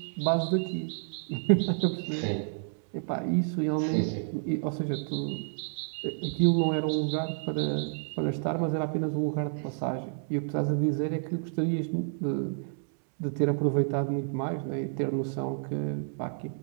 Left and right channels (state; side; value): silent; left; digital silence